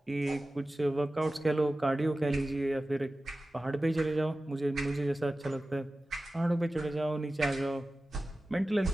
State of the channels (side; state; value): both; normal; correlation 0.95